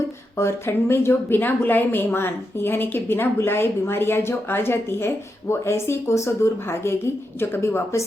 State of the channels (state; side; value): normal; both; correlation 0.86